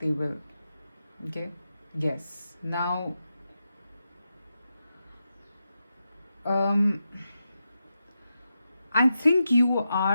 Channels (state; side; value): inverted; both; correlation -0.88